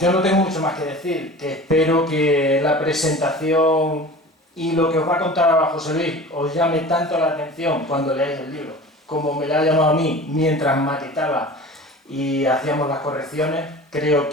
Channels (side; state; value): both; normal; correlation 0.38